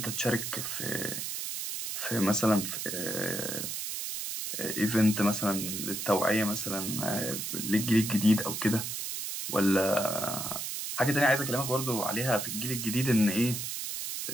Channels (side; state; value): right; noise; hiss, 4 dB below the sound